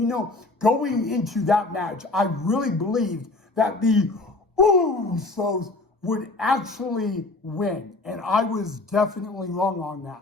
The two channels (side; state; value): right; quieter; 3.2 dB